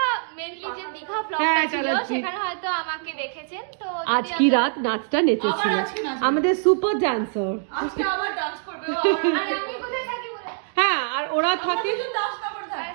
মেনলি যে দীঘা ব্লগটা হ্যাঁ, ছিল চালাচ্ছি। সেখানে হয়তো আমাকে দেখেছেন। তো আজ কি রাত নাচটা নেচেছিল আমাদের সুপার ডান্সার। আজকে আবার ডান্স করবে আরে আমি কোথায় থাকি বলে হ্যাঁ, আর ওরা থাকে দাসনগর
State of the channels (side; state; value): left; silent; digital silence